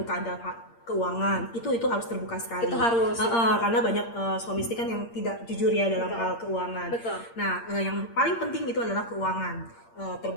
dalam keuangan, itu harus terbuka sekali. Itu harus. Karena banyak suami istri kan yang tidak jujur ya dalam hal keuangan. Betul. Nah, yang paling penting itu adalah keuangan,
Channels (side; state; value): right; late; 8.7 ms